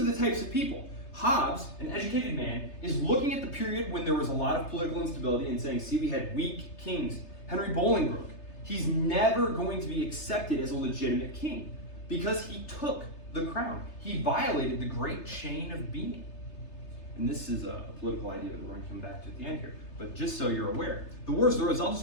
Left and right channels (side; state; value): right; late; 3.3 ms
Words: the types of people. Hobbes, an educated man, is looking at the period when there was a lot of political instability and saying, see, we had weak kings. Henry Bolingbroke, he's never going to be accepted as a legitimate king because he took the crown. He violated the great chain of being. And this is a political idea that we're going to come back to at the end here. But just so you're aware, the Wars of the Roses, I'll